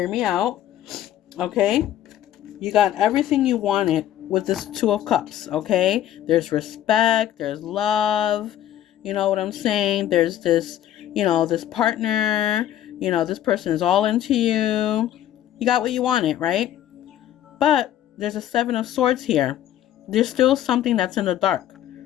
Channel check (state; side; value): quieter; right; 11.9 dB